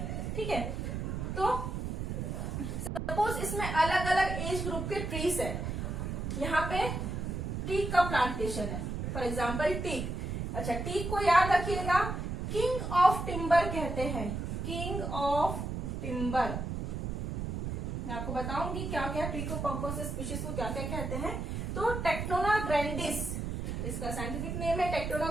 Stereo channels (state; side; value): noise; right; rumble, 3 dB below the sound